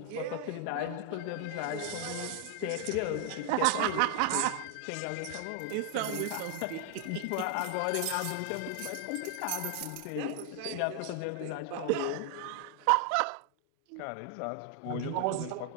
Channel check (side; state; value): both; different; correlation 0.00